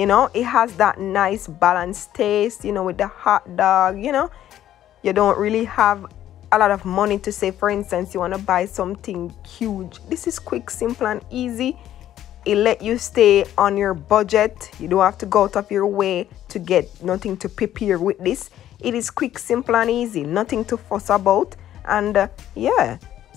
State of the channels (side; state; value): right; quieter; 12.0 dB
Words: know. It has that nice balanced taste, you know, with the hot dog. You know, you don't really have a lot of money to say, for instance, you want to buy something huge. This is quick, simple, and easy. It let you stay on your budget. You don't have to go out of your way to get nothing to prepare with this. It is quick, simple and easy, nothing to fuss about. And yeah,